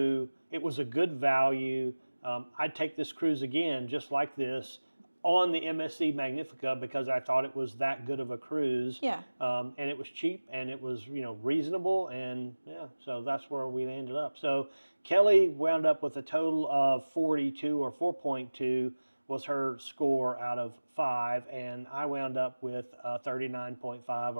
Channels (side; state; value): both; inverted; correlation -1.00